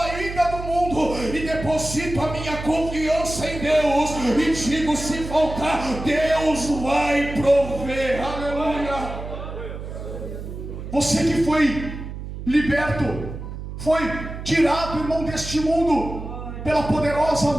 do mundo e deposito a minha confiança em Deus e digo: se faltar, Deus vai prover. Aleluia. Você que foi liberto, foi tirado, irmão, deste mundo pela poderosa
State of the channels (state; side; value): noise; right; hum, 9 dB below the sound